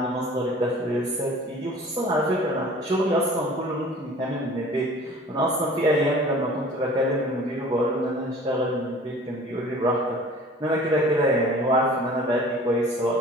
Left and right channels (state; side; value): normal; both; correlation 0.46